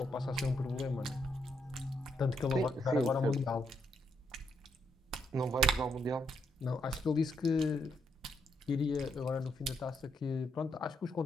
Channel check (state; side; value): normal; both; correlation 0.77